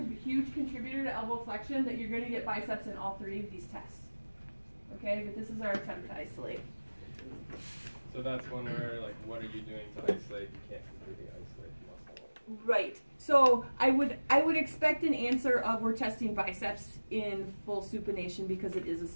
huge contributor to elbow flexion that you're going to get biceps in all three of these tests. Okay, but this is our attempt to isolate. So that's one where, like, what are you doing to isolate? You can't completely isolate the muscle. Right. So I would expect an answer of we're testing biceps in full supination because it is a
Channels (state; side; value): inverted; both; correlation -1.00